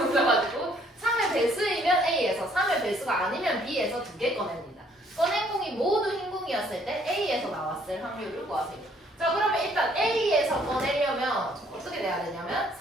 3의 배수이면 A에서 3의 배수가 아니면 B에서 2개 꺼냅니다. 꺼낸 공이 모두 흰 공이었을 때 A에서 나왔을 확률을 구하세요. 자, 그러면 일단 A에서 꺼내려면 어떻게 돼야 되냐면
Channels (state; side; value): normal; both; correlation 0.64